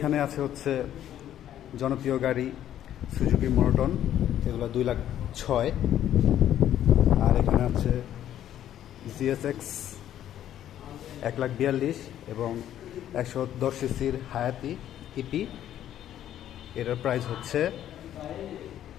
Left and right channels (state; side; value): quieter; right; 11.3 dB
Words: আছে হচ্ছে জনপ্রিয় গাড়ি সুজুকি মোনোটন, এগুলো 2,06,000। আর এখানে আছে জিএসএক্স 1,42,000 এবং 110 সিসির হায়াতি ইপি, এটার প্রাইস হচ্ছে